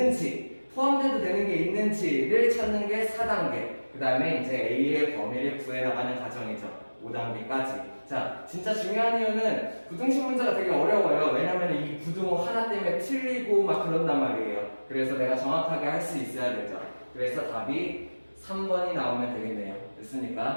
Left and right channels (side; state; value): both; inverted; correlation -1.00